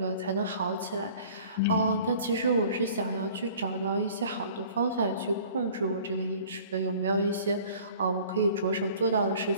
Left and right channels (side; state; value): both; inverted; correlation -0.49